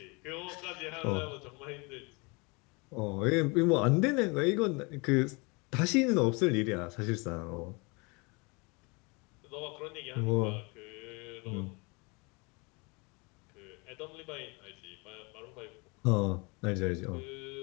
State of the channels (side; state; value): right; quieter; 28.9 dB